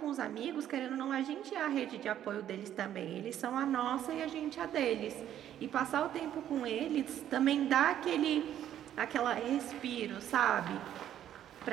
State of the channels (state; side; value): quieter; left; 11.0 dB